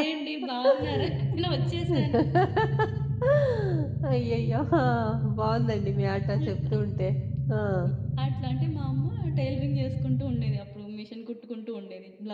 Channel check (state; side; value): identical; both; correlation 1.00